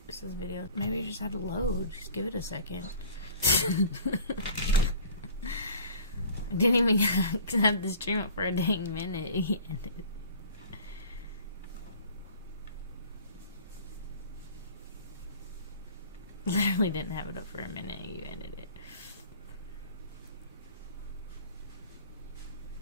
it says video. Maybe you just had to load. Just give it a second. I didn't even have the stream up for a dang minute. He ended it. Literally didn't have it up for a minute. You ended it.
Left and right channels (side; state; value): both; inverted; correlation -0.45